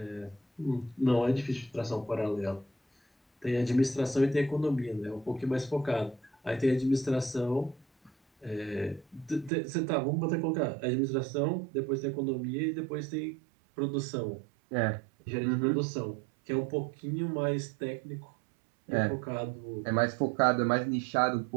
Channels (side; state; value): left; drops out; at 9.5 s